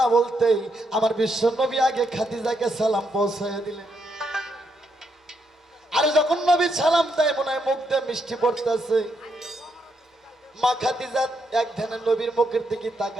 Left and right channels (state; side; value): normal; both; correlation 0.78